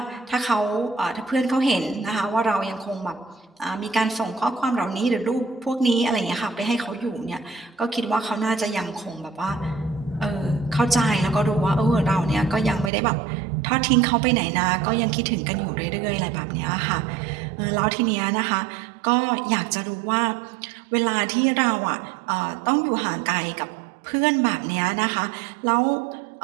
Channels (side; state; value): left; drops out; at 12.9 s